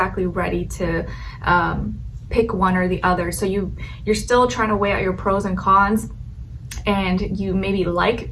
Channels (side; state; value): both; identical; correlation 1.00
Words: ready to pick one or the other. So you're still trying to weigh out your pros and cons, and you maybe